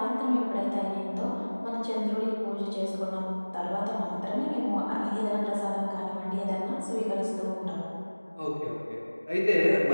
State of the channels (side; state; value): both; inverted; correlation -1.00